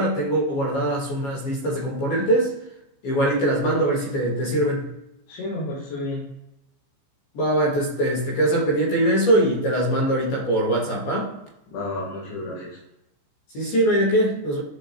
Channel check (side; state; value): right; late; 14 ms